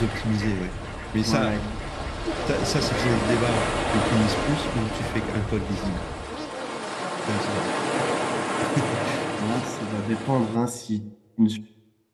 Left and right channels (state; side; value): identical; both; correlation 1.00